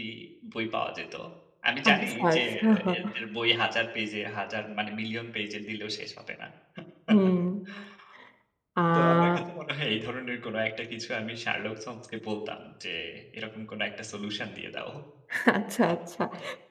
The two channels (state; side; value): identical; both; correlation 1.00